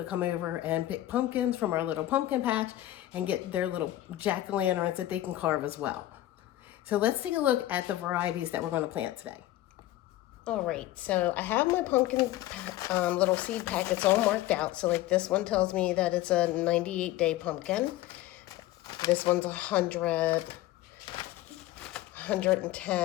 come over and pick pumpkins from our little pumpkin patch and get their little jack-o'-lanterns that they can carve as well. So let's take a look at the varieties that we're going to plant today. All right, so I have my pumpkin little seed packets all marked out. So like this one tells me that it's a 98-day pumpkin. This one's 100,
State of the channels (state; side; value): quieter; right; 15.2 dB